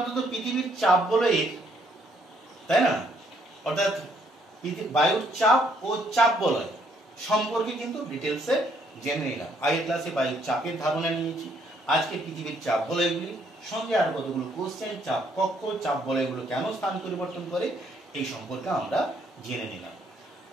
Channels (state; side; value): normal; both; correlation 0.68